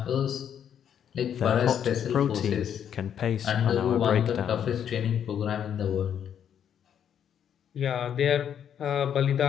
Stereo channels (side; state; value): right; quieter; 8.9 dB